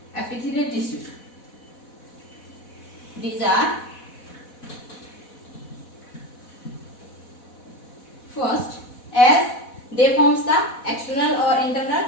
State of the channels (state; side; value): late; right; 4.1 ms